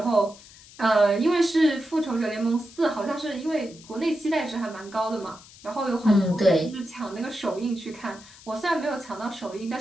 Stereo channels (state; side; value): noise; left; hiss, 21 dB below the sound